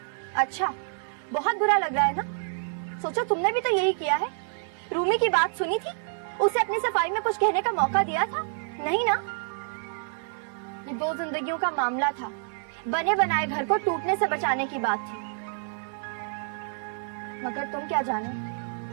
अच्छा, बहुत बुरा लग रहा है ना? सोचो तुमने भी तो यही किया है। रूमी की बात सुनी थी, उसे अपनी सफाई में कुछ कहने का मौका दिया था? नहीं ना। ये दो जिंदगियों का मामला था, बने बनाए घर को टूटने से बचाने की बात थी। मगर तुम क्या जानो,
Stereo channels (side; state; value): left; silent; 60 dB below the other